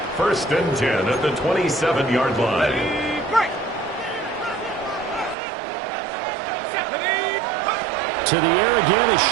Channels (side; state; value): left; drops out; at 5.4 s